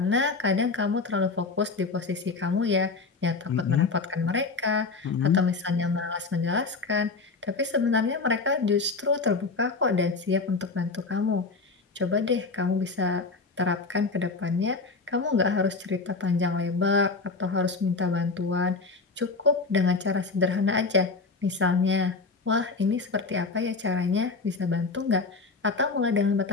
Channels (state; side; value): quieter; right; 4.1 dB